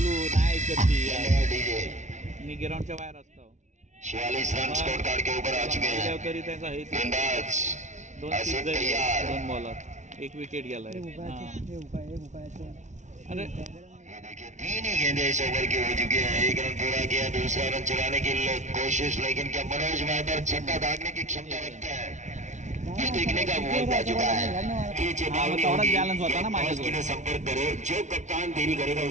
मी ग्राउंडच्या बाहेर असतो। 46 रन स्कोर कार्ड के ऊपर आ चुके हैं। तरी त्यांचा हे गेंदबाज 2 बॉलर 1 विकेट गेलाय। अरे देखिए 3 ही गेंदें इस ओवर की हो चुकी है। 1 रन पूरा किया, दूसरा रन चलाने की कोशिश, लेकिन क्या मनोज मेहतर छक्का दागने की क्षमता रखता है, ये देखने का वक्त आ चुका है। संपर्क करो, जो कप्तान देरी करेगा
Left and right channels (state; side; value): late; left; 0.35 ms